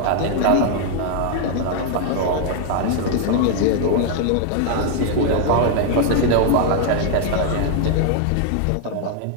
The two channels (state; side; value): different; both; correlation 0.00